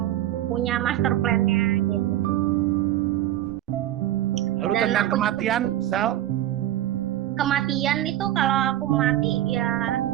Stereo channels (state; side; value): quieter; left; 13.3 dB